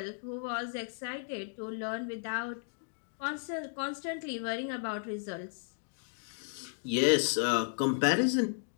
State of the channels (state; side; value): silent; right; digital silence